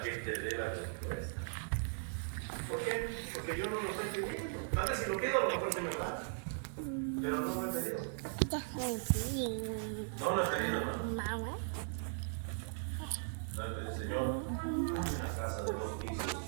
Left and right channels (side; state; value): left; silent; digital silence